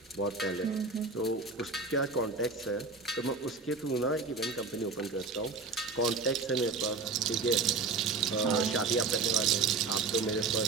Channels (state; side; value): quieter; left; 4.2 dB